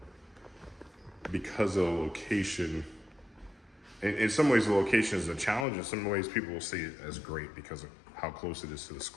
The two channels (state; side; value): drops out; right; at 5.7 s